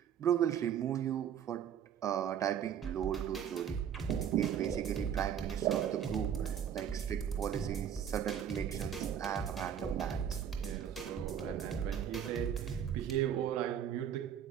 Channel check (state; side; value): quieter; left; 8.9 dB